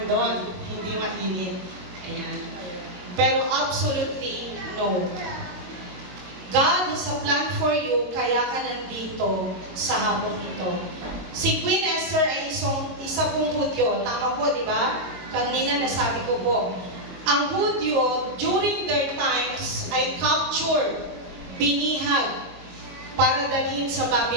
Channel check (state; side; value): late; left; 22 ms